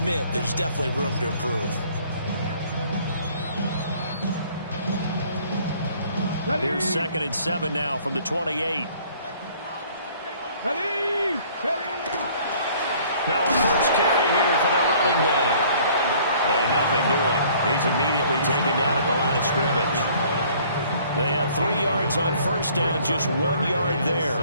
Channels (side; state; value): both; inverted; correlation -0.56